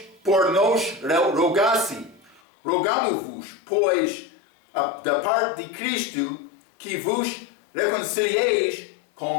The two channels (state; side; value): drops out; right; at 2.4 s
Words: por nós rogasse. Rogamo-vos, pois, da parte de Cristo, que vos reconcilieis